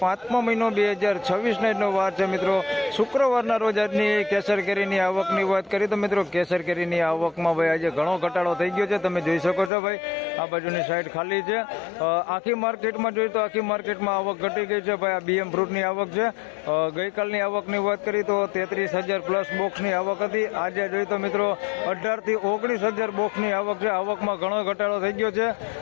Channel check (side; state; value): right; drops out; at 9.7 s